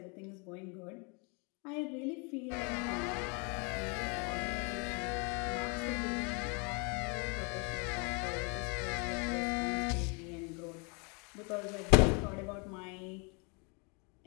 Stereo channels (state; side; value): quieter; right; 33.2 dB